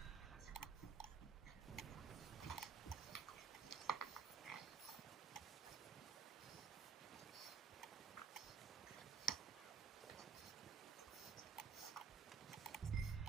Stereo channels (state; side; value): quieter; left; 6.1 dB